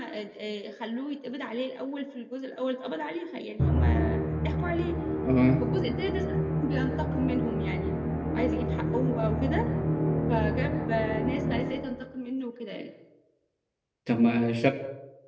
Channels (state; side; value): identical; both; correlation 1.00